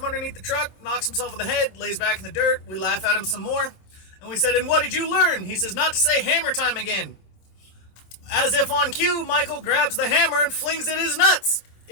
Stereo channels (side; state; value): right; late; 27 ms